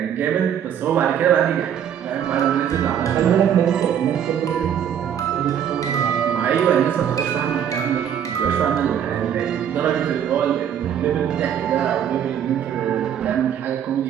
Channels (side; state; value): left; quieter; 9.1 dB